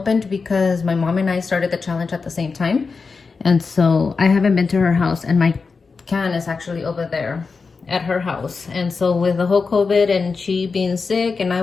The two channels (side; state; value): right; quieter; 4.7 dB